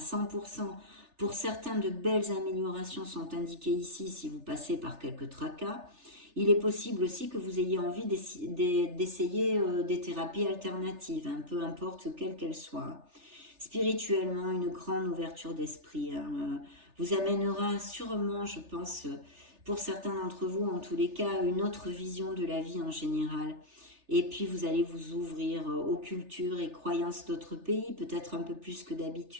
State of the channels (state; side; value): late; left; 3.3 ms